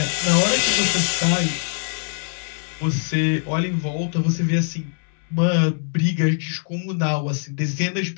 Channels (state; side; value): silent; right; digital silence